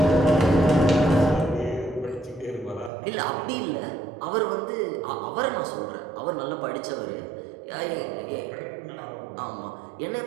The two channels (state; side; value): drops out; left; at 2.9 s